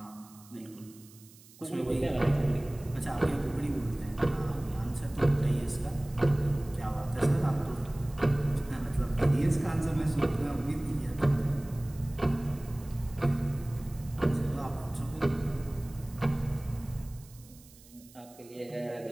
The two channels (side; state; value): right; noise; hiss, 23 dB below the sound